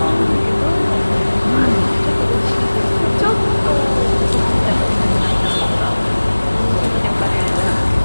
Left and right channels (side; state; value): both; inverted; correlation -1.00